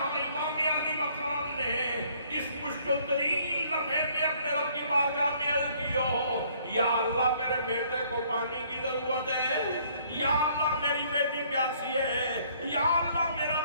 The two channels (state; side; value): inverted; both; correlation -0.62